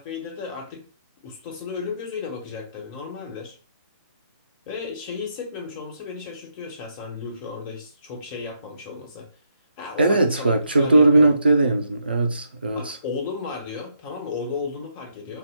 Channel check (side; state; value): both; inverted; correlation -0.77